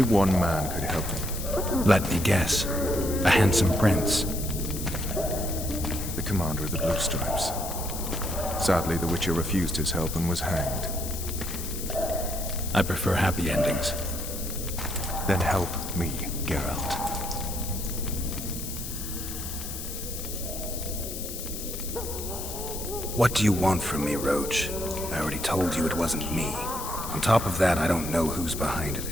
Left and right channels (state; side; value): noise; left; hiss, 8 dB below the sound